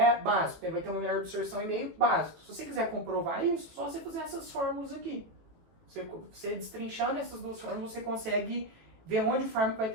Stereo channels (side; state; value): left; late; 18 ms